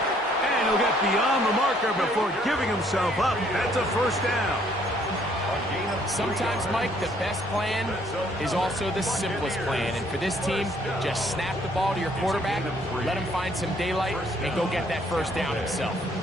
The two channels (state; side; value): normal; both; correlation 0.65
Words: And he'll get beyond the marker before giving himself up. That's a first down. Sometimes, Mike, the best plan is also the simplest plan. And for this team, just snap the ball to your quarterback, let him find some daylight, and go get that first down himself.